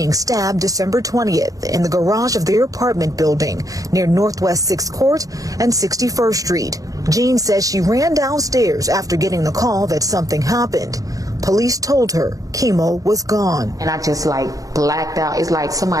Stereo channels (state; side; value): late; left; 0.17 ms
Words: stabbed December 20th in the garage of their apartment building near Northwest 6th Court and 61st Street. Jean says she ran downstairs after getting the call that something happened. Police told her Keimo was gone. And I just blacked out. It's like